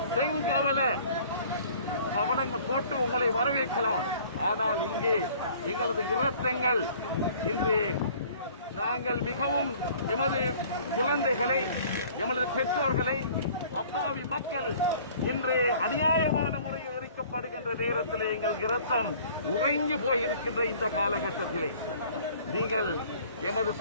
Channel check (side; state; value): both; inverted; correlation -0.52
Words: செங்கவல பவனங்கள் போட்டு உங்களை வரவேற்கலாம். ஆனால் இங்கே எங்களது இரத்தங்கள் இன்று நாங்கள் மிகவும் எமது குழந்தைகளை, எமது பெற்றோர்களை, அப்பாவி மக்கள் இன்று அநியாயமான முறையில் எரிக்கப்படுகின்ற நேரத்தில் எங்கள் இரத்தம் உறைஞ்சு போயிருக்கின்ற இந்த காலகட்டத்திலே நீங்கள் எமது